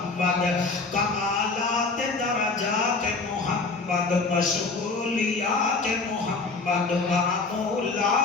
کمالات درجات محمد مشغولیات محمد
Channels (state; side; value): quieter; right; 3.8 dB